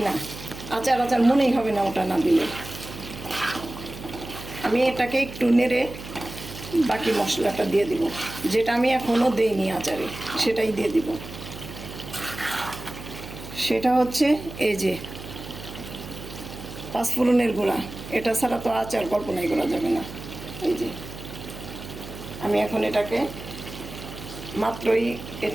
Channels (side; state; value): right; noise; hum, 12 dB below the sound